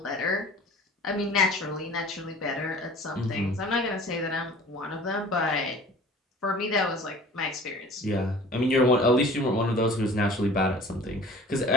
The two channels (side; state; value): both; normal; correlation 0.45